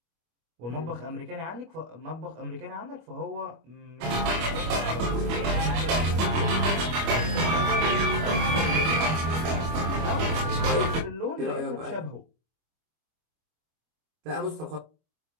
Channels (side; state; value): left; late; 25 ms